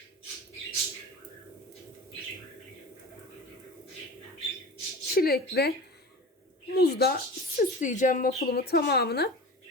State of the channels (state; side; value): normal; both; correlation 0.34